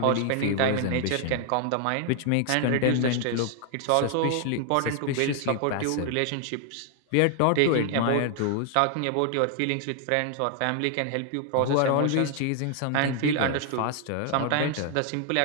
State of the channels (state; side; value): different; both; correlation 0.00